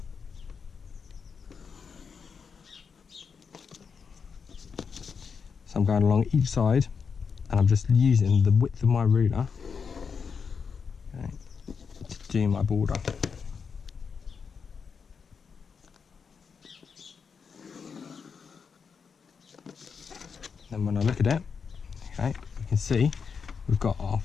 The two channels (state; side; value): quieter; right; 5.9 dB